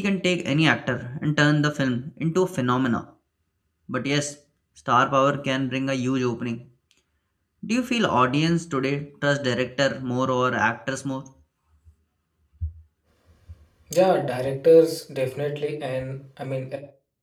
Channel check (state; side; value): identical; both; correlation 1.00